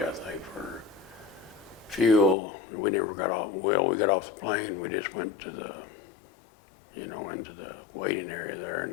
think, for fuel. We never got off. Well, we got off the plane. We just went to the, into the waiting area there,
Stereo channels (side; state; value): right; drops out; at 2.4 s